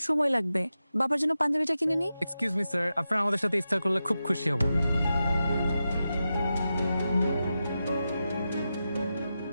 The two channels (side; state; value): both; inverted; correlation -0.90